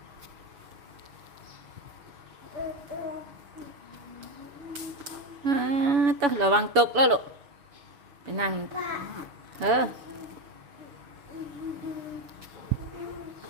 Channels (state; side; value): late; left; 7.0 ms